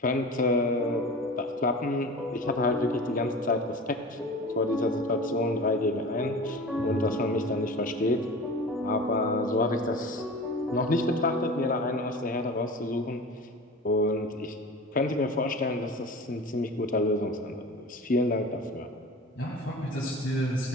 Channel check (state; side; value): normal; both; correlation 0.35